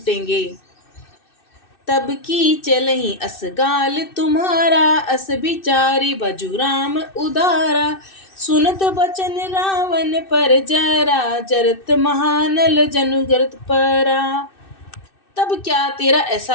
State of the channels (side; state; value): right; late; 2.6 ms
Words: तब की चलहि असगाल तुम्हारा, अस बिचारी बजु राम उदारा। सुनत बचन रावण पर जरा, जरत महानल जनुग्रत परा। तब क्या तेरा